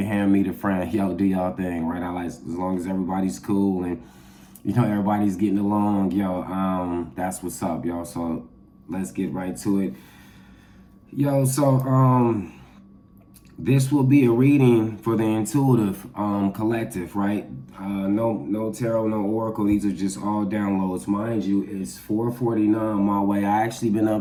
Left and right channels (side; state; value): both; identical; correlation 1.00